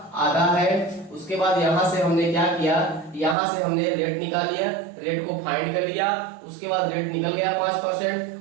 आधा है। उसके बाद यहाँ से हमने क्या किया, यहाँ से हमने रेट निकाल लिया, रेट को फाइंड कर लिया। उसके बाद रेट निकल गया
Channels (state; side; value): drops out; left; at 3.4 s